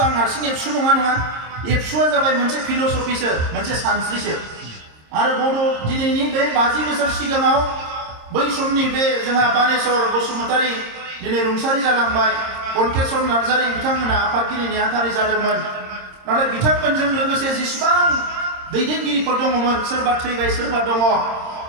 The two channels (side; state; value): left; late; 26 ms